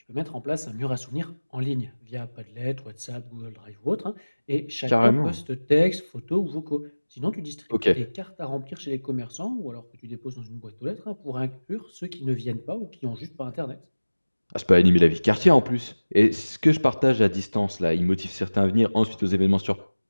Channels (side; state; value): both; inverted; correlation -1.00